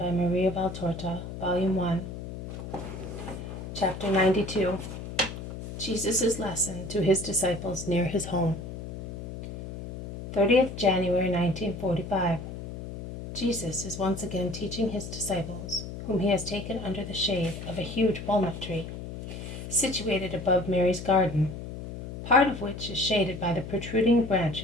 Maria Valtorta, Volume 1, Chapter 92. Jesus' Lesson to His Disciples Near His Home. 30th January 1945. Jesus is once again teaching His disciples, whom He has taken under the shade of a huge walnut tree, situated above Mary's garden, part of which is shaded by the protruding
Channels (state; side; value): noise; left; hum, 9 dB below the sound